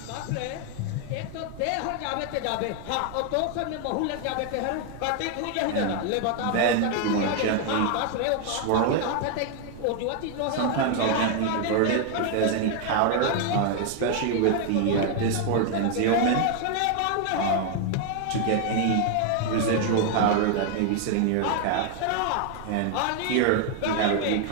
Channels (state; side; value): different; both; correlation 0.00